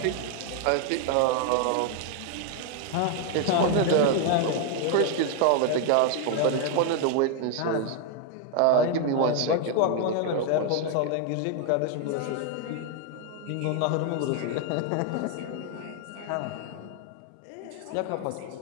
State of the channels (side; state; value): both; different; correlation 0.00